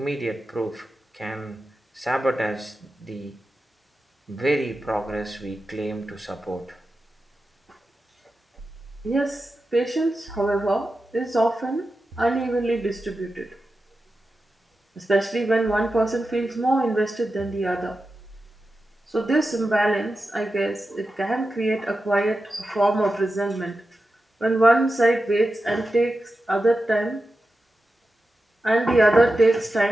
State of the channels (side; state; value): both; normal; correlation 0.91